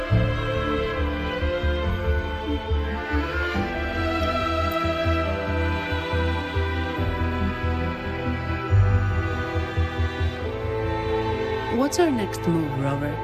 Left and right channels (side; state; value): both; identical; correlation 1.00